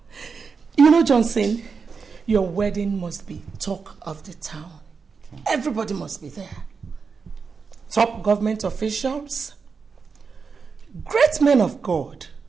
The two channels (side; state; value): left; quieter; 5.3 dB